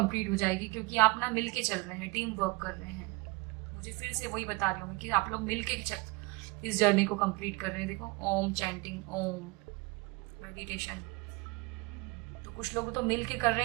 हो जाएगी, क्योंकि आप ना मिल के चल रहे हैं, टीम वर्क कर रहे हैं। मुझे फिर से वही बता रही हूँ कि आप लोग मिल के इस जर्नी को कंप्लीट कर रहे हैं। देखो ओम चैंटिंग, ओम मेडिटेशन। तो कुछ लोग तो मिल के कर रहे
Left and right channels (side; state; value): left; quieter; 25.9 dB